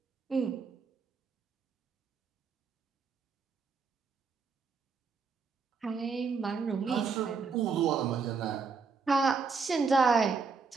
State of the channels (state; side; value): quieter; left; 5.1 dB